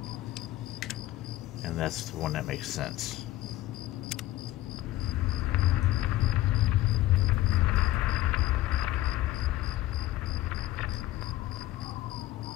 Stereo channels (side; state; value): right; quieter; 15.6 dB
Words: And that's the one that makes sense.